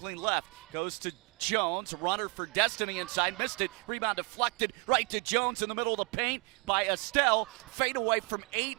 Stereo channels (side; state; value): left; quieter; 31.9 dB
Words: left. Goes to Jones, runner for Destiny inside, missed it. Rebound deflected right to Jones in the middle of the paint by Estelle. Fade away from 8,